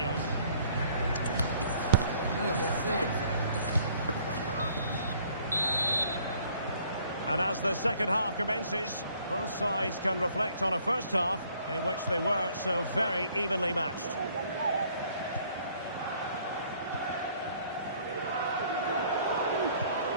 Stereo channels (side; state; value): both; inverted; correlation -0.60